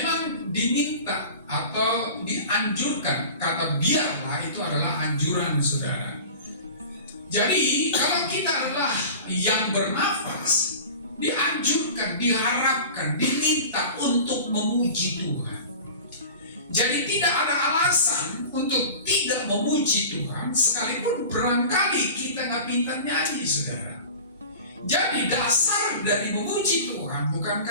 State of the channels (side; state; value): both; inverted; correlation -0.36